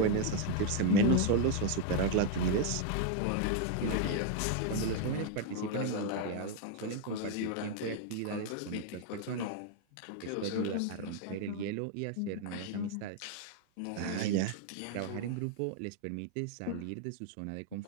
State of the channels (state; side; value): different; both; correlation 0.01